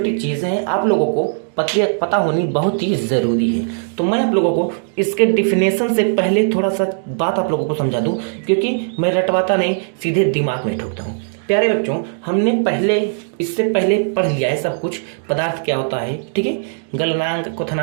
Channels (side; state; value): left; silent; digital silence